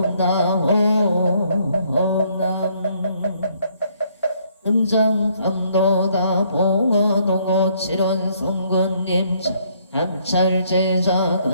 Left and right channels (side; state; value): both; inverted; correlation -0.68